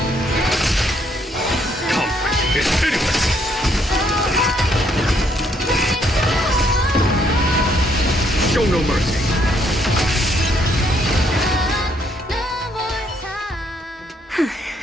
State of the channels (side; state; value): both; normal; correlation 0.70